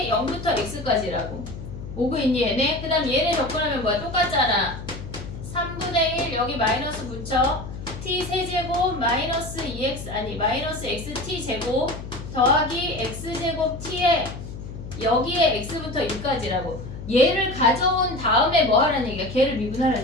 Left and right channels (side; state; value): left; noise; hum, 10 dB below the sound